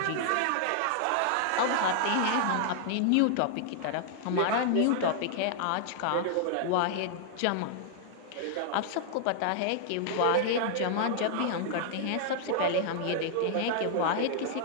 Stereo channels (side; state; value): both; different; correlation -0.01